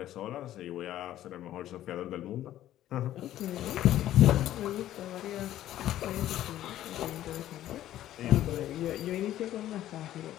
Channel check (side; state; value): right; quieter; 13.0 dB